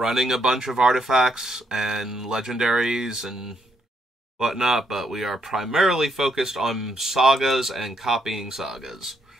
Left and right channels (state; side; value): normal; both; correlation 0.75